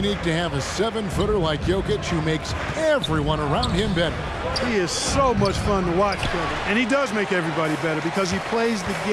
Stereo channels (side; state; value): both; identical; correlation 1.00